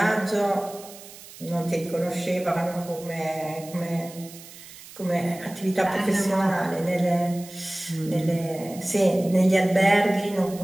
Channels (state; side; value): noise; right; hiss, 17 dB below the sound